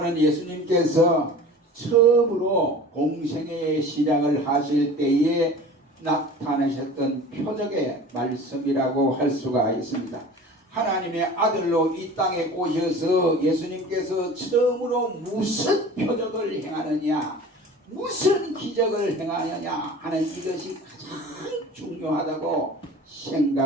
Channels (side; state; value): both; normal; correlation 0.40